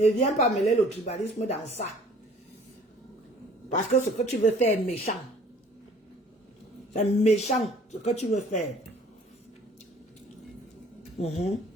viens pas mêler le tribalisme dans ça. Parce que ce que tu veux faire est méchant. C'est méchant ce que tu veux faire.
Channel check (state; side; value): normal; both; correlation 0.53